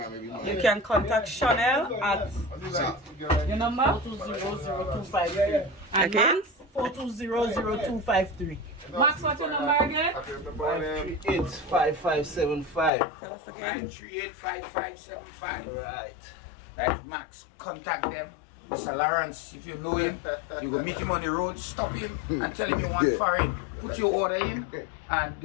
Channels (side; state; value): right; drops out; at 12.9 s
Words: You can contact Chanel at your number 4200253. Again? 4200253. Max, what's your number again? 9385575. Tell us again. 9385575. Right. That's Max. Contact them. Mr. Lawrence, if you know him, you go meet him on the road, stop him and tell him you want farine. Put your order in and